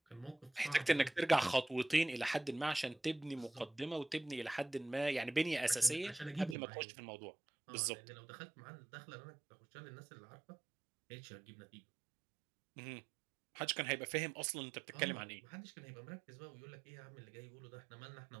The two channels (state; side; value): drops out; left; at 6.6 s